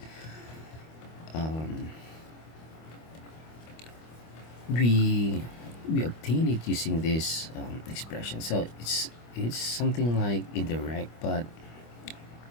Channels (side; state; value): right; late; 25 ms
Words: we we obtain it using this expression. So it's something like indirect, but